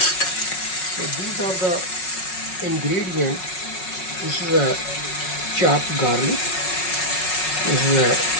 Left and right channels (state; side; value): late; right; 5.4 ms